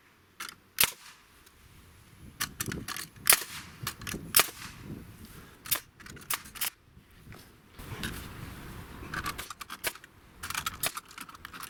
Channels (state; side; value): identical; both; correlation 1.00